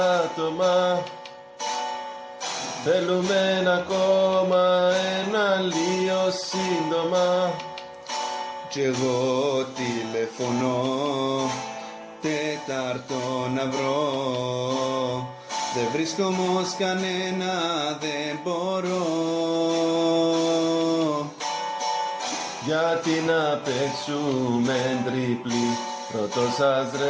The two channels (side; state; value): both; identical; correlation 1.00